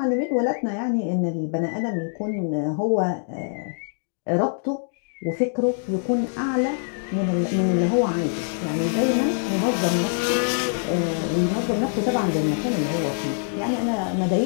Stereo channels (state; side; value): silent; right; digital silence